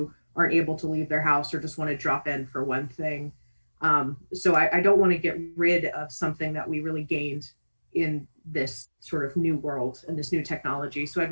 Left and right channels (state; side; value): inverted; both; correlation -1.00